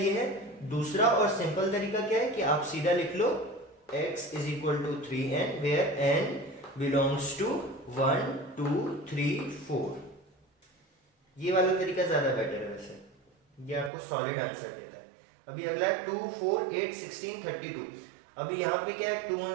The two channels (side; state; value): left; drops out; at 13.9 s